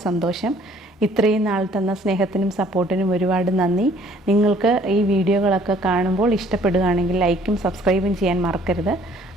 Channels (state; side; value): normal; both; correlation 0.58